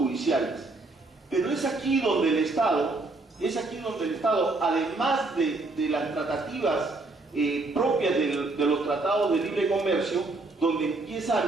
Pero es aquí donde el Estado, además de las tratativas propias de los tratados de libre comercio, donde empieza a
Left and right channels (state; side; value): quieter; left; 3.3 dB